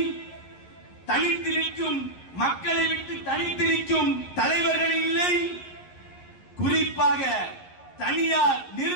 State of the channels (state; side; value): late; right; 11 ms